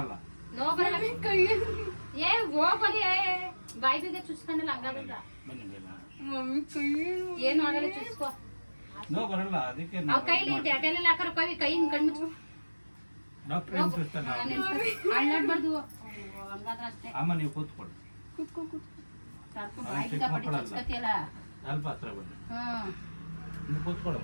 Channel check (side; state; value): both; inverted; correlation -1.00